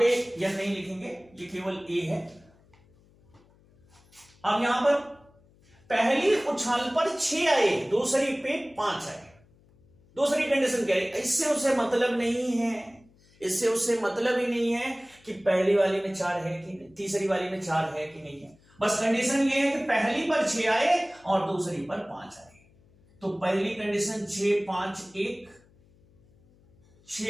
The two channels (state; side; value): noise; left; hum, 30 dB below the sound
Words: यह नहीं लिखेंगे, ये केवल ए है। अब यहां पर पहली उछाल पर 6 आए, दूसरी पे 5 आए। दूसरी कंडीशन क्या है? इससे उससे मतलब नहीं है, इससे उससे मतलब ही नहीं है कि पहली वाली में 4 है कि नहीं, तीसरी वाली में 4 है कि नहीं है। बस कंडीशन ये है कि पहली पर 6 आए और दूसरी पर 5 आए। तो पहली कंडीशन 6 5 1,